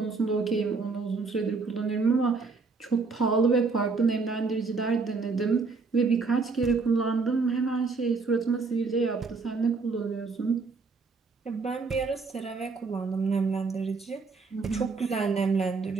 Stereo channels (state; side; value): quieter; left; 4.4 dB